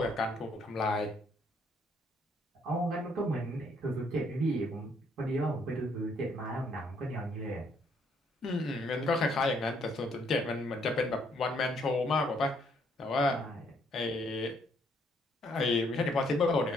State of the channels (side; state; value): both; normal; correlation 0.68